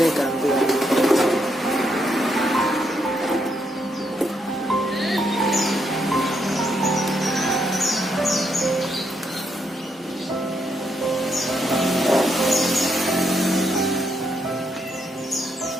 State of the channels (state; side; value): normal; both; correlation 0.77